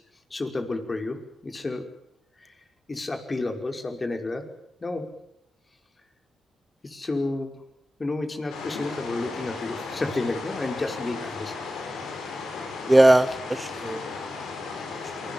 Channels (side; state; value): both; normal; correlation 0.94